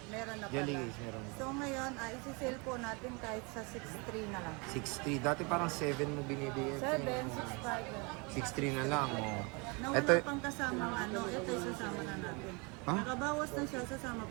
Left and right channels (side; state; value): left; quieter; 30.0 dB